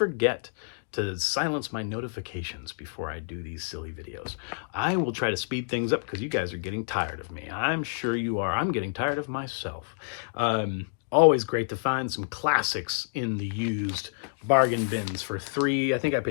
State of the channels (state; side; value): silent; right; digital silence